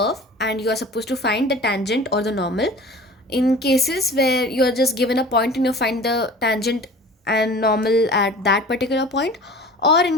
and you are supposed to find the tangent or the normal. In cases where you're just given a point and you find the tangent and normal at that particular point, or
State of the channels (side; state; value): both; normal; correlation 0.41